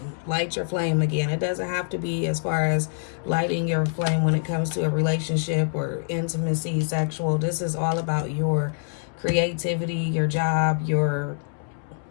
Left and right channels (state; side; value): silent; right; digital silence